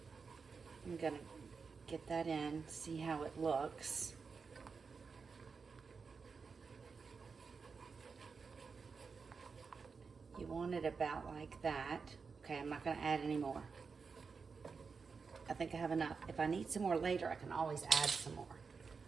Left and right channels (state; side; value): quieter; left; 5.2 dB